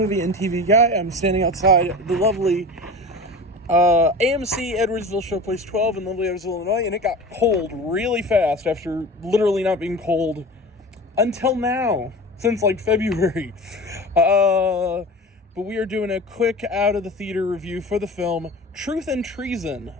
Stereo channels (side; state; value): both; normal; correlation 0.33